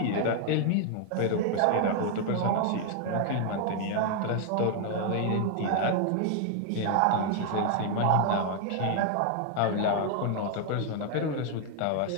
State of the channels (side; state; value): both; different; correlation 0.00